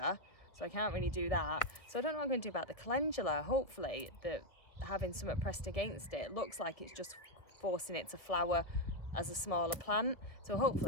so I can't really do that. So I don't know what I'm going to do about the calendula. Hopefully, having something pressed against it looks like it's just forcing it to flower as a smaller plant. So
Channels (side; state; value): right; late; 1.4 ms